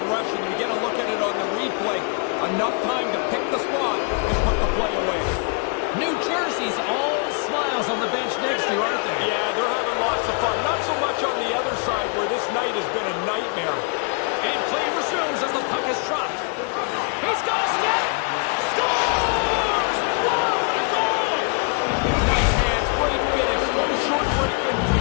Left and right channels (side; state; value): right; quieter; 36.4 dB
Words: rush, and we get a look at it on the replay. Enough time to pick the spot and put the play away. New Jersey's all smiles on the bench next to you, aren't they? Yeah, they're having lots of fun. Not so much on the other side where this night has been a nightmare. And play resumes as the puck is dropped. He's got a step. Scores! Wow, what a goal! Nice hands, great finish. Little short break in